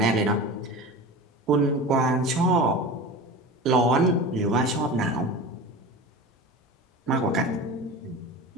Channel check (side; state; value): both; normal; correlation 0.32